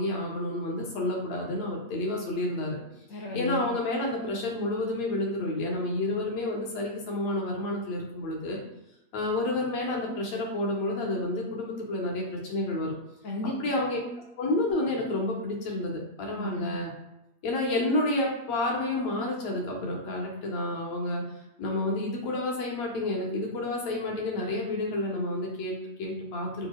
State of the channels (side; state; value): right; late; 8.5 ms